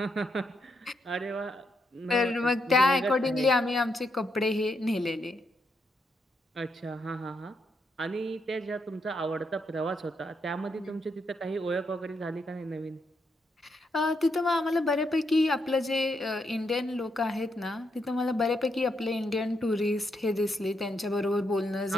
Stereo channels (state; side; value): normal; both; correlation 0.79